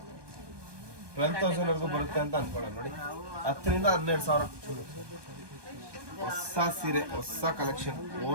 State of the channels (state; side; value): late; left; 1.2 ms